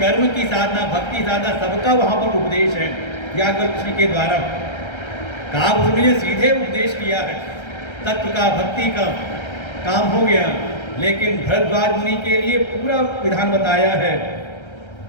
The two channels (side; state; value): right; late; 1.3 ms